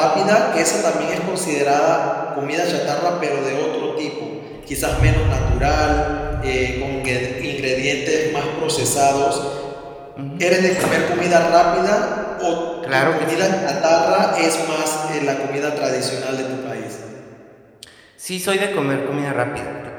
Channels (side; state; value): both; identical; correlation 1.00